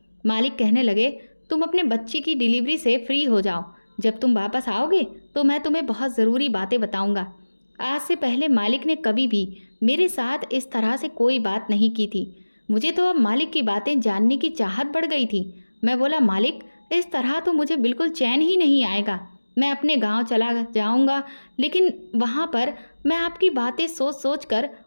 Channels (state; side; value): inverted; both; correlation -1.00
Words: मालिक कहने लगे, तुम अपने बच्चे की डिलीवरी से फ्री हो जाओ। जब तुम वापस आओगे तो मैं तुम्हें बहुत ज़रूरी बातें बताऊंगा। आज से पहले मालिक ने कभी भी मेरे साथ इस तरह से कोई बात नहीं की थी। मुझे तो अब मालिक की बातें जानने की चाहत बढ़ गई थी। मैं बोला, मालिक, इस तरह तो मुझे बिल्कुल चैन ही नहीं आएगा। मैं अपने गांव चला जाऊंगा, लेकिन वहां पर मैं आपकी बातें सोच सोच कर